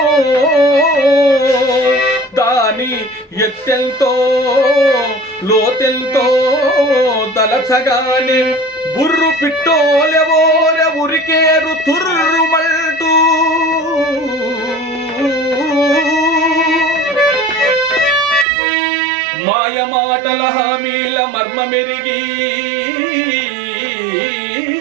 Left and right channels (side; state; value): left; drops out; at 18.4 s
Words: దాని ఎత్తెల్తో లోతెల్తో తలచగానే బుర్రు పిట్టోలెవోర ఉరికేరు తుర్రుమంటూ. మాయమాటల హామీల మర్మమెరిగి,